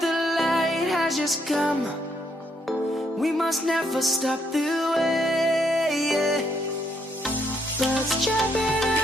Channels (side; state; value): both; normal; correlation 0.73